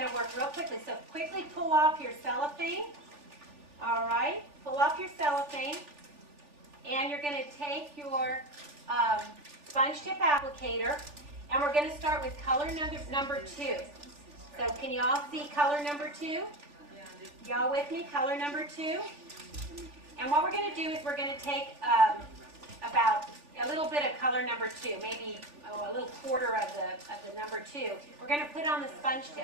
to work real quickly. So quickly pull off your cellophane. All right, pull off your cellophane. And you're going to take your sponge tip applicator, and we're going to start with color number 2. So can you all see color number 2? Y'all with me? Color number 2. And what we're going to do is we're going to take about a little bit of color number 2, maybe a little quarter of the number 2. We're going to put it on the sponge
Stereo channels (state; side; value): late; left; 3.4 ms